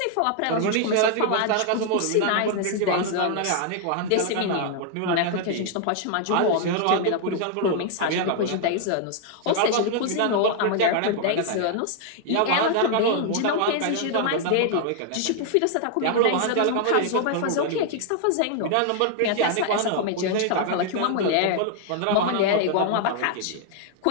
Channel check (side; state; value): both; different; correlation 0.00